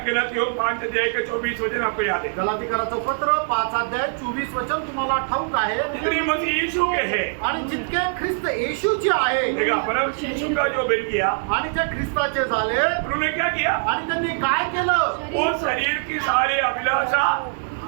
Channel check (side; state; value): left; silent; digital silence